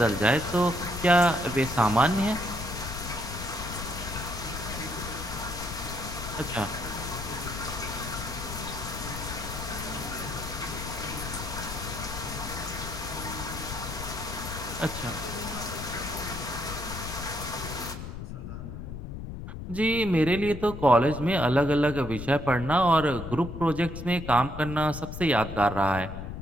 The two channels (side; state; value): left; noise; rumble, 8 dB below the sound